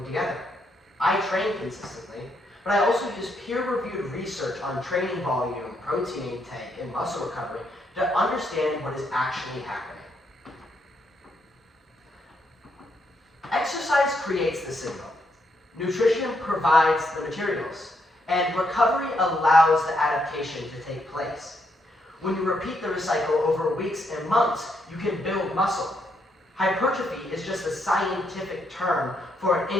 together. I train consistently, but I also use peer-reviewed research on training volume, protein intake, and muscle recovery to understand what is actually happening. Exercise creates the signal. Nutrition provides the materials, and recovery allows the adaptation to take place. When you repeat the cycle over weeks and months, you can build muscle. Hypertrophy is just a scientific term for an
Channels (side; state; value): both; normal; correlation 0.77